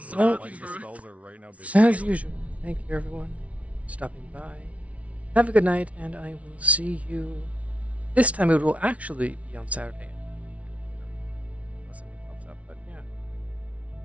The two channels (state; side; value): late; left; 0.065 ms